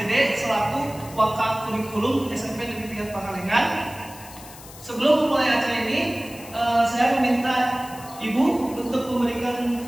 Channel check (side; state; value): left; noise; hiss, 17 dB below the sound